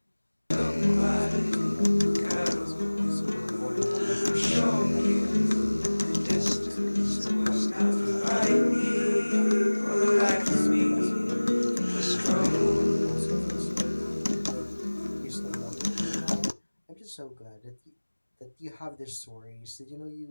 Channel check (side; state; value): both; inverted; correlation -1.00